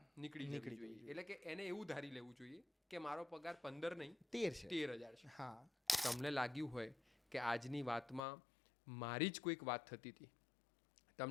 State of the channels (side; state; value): right; drops out; at 8.2 s